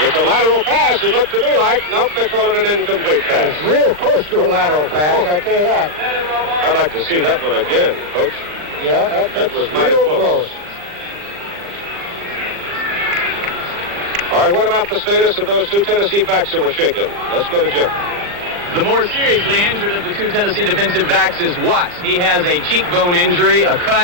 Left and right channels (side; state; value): left; late; 40 ms